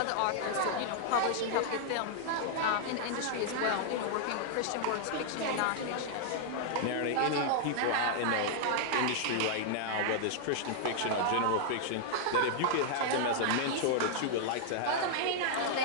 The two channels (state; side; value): different; both; correlation -0.01